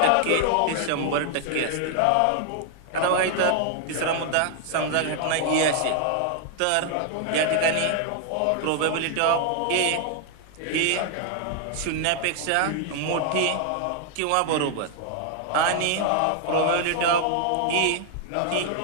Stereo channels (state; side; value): different; both; correlation 0.00